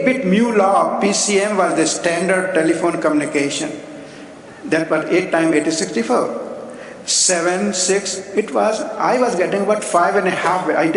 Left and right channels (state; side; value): identical; both; correlation 1.00